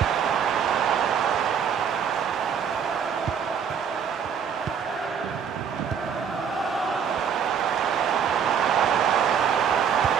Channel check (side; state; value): left; quieter; 7.4 dB